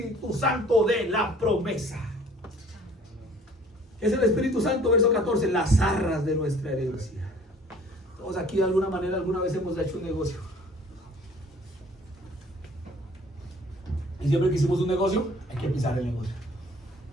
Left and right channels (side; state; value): both; normal; correlation 0.53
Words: Santo de la promesa. ¿Qué es el Espíritu Santo? Verso 14, las arras de nuestra herencia. Todos aquí de alguna manera, alguna vez hemos hecho un negocio. Y siempre que hicimos un negocio, hay que pisar el negocio.